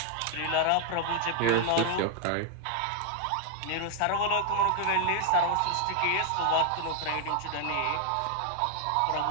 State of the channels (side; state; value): both; different; correlation 0.00